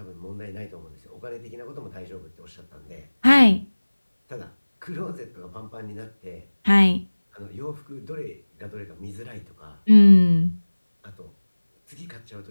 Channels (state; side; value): inverted; both; correlation -1.00